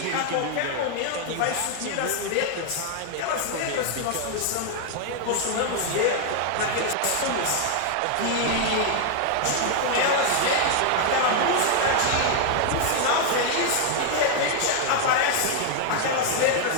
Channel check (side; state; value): both; different; correlation 0.00